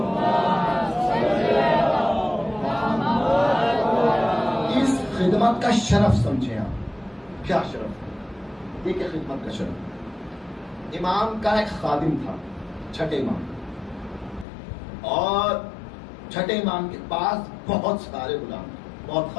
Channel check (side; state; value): right; drops out; at 14.5 s